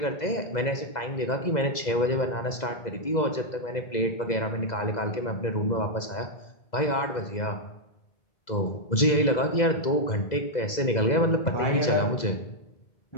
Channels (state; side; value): late; right; 2.0 ms